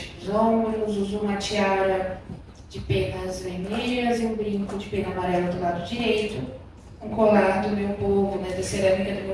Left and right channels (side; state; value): both; identical; correlation 1.00